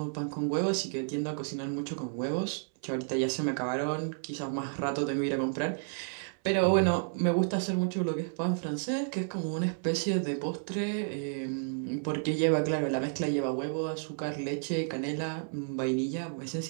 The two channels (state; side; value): silent; left; 57 dB below the other